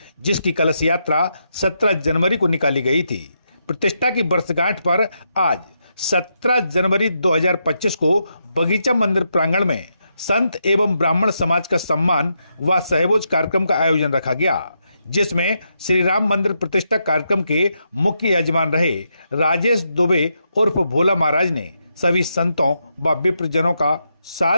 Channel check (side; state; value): both; inverted; correlation -0.82